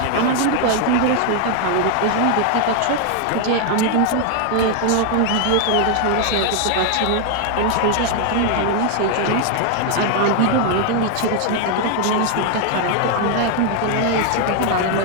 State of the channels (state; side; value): different; both; correlation 0.01